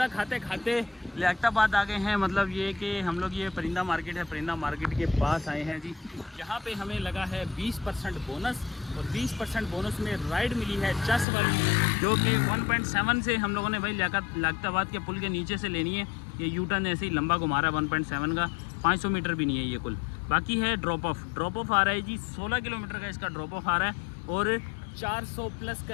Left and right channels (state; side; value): drops out; right; at 11.2 s